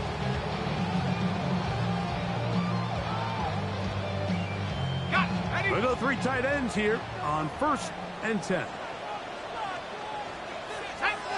We'll go 3 tight ends here on first and 10.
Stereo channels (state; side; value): identical; both; correlation 1.00